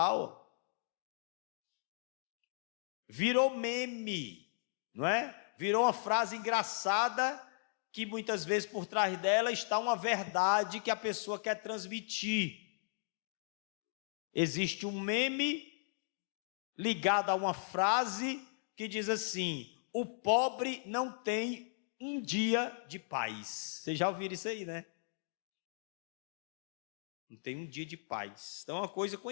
Virou meme, não é? Virou uma frase engraçada que muitas vezes por trás dela está uma verdade que a pessoa quer transmitir. Existe um meme ligado a uma frase que diz assim: o pobre não tem um dia de paz. Vocês já ouviram isso aí, né? Não tem um dia de paz. Então é uma coisa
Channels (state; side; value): silent; right; digital silence